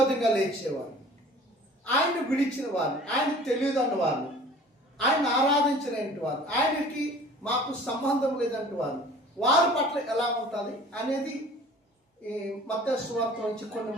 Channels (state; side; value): normal; both; correlation 0.47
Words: లేచేవారు, ఆయన్ని విడిచిన వారు, ఆయనకు తెలియదన్న వారు, ఆయన ఆరాధించినటువంటి వారు, ఆయనకి మాకు సంబంధం లేదంటే వారి పట్ల ఎలా ఉంటుంది అనేది ఈ మత్తయి సువార్త నుంచి కొన్ని